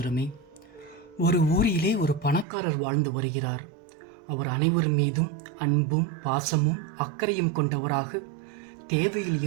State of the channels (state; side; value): drops out; left; at 2.5 s